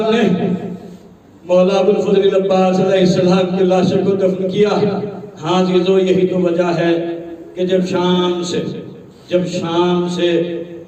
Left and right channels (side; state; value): both; identical; correlation 1.00